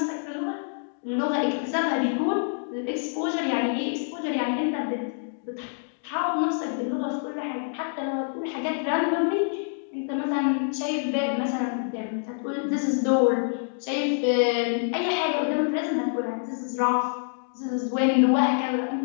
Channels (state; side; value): silent; right; digital silence